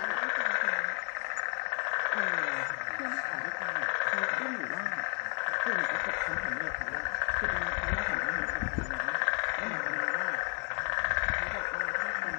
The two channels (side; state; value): right; quieter; 38.8 dB